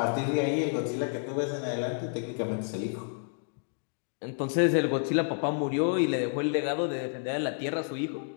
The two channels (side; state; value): right; silent; digital silence